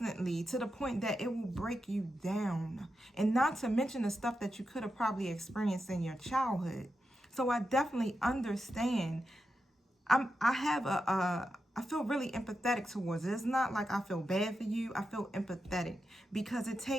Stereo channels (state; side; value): normal; both; correlation 0.88